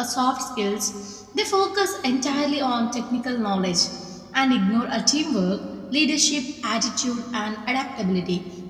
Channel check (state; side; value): identical; both; correlation 1.00